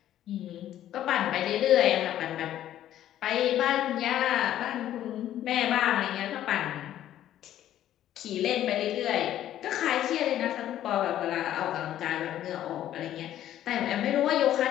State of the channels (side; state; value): right; quieter; 12.1 dB